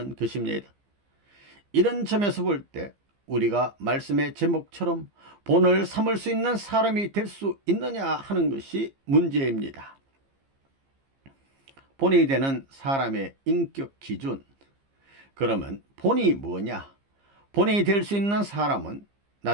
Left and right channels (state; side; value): late; left; 15 ms